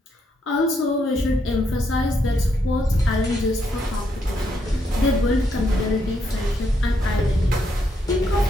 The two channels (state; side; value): normal; both; correlation 0.77